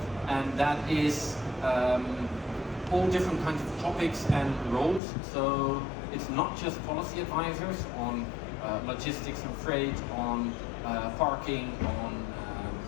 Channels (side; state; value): right; drops out; at 5.0 s